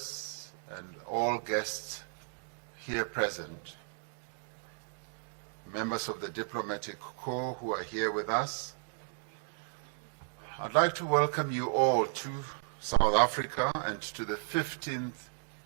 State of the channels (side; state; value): left; silent; digital silence